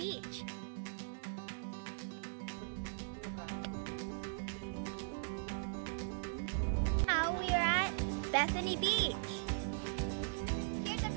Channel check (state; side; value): silent; left; digital silence